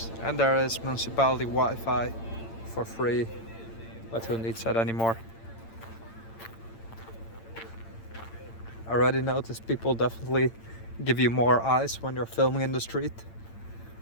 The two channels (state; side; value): late; right; 8.8 ms